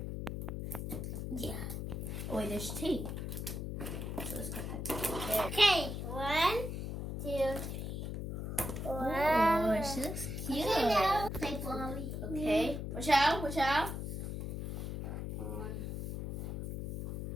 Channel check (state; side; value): noise; left; hum, 4 dB below the sound